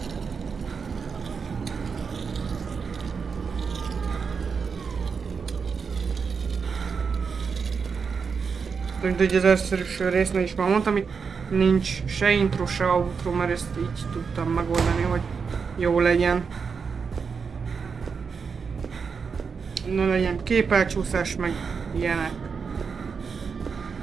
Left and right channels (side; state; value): left; quieter; 5.7 dB